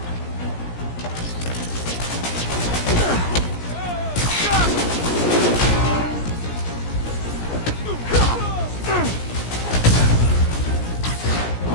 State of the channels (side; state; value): right; late; 17 ms